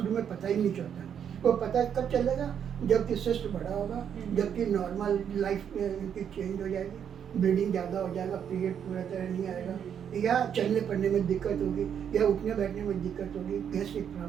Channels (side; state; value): left; quieter; 8.4 dB